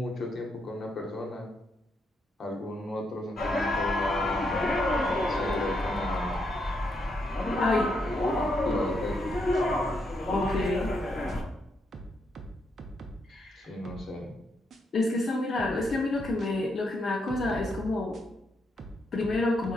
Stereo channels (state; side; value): normal; both; correlation 0.79